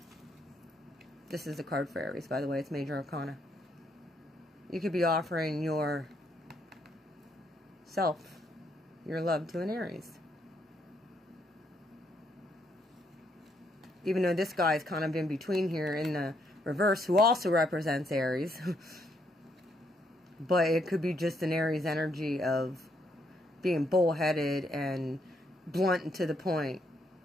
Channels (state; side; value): normal; both; correlation 0.74